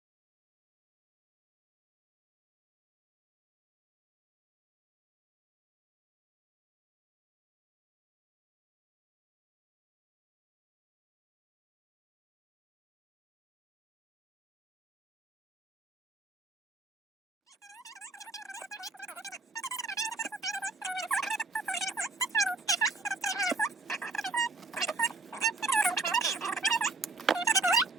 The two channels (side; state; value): left; quieter; 3.2 dB